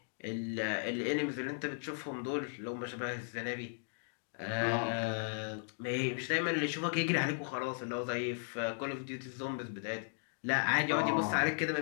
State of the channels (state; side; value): silent; right; digital silence